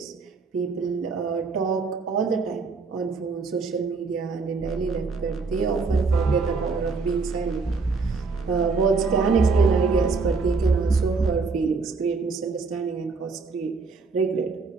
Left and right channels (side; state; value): left; quieter; 4.4 dB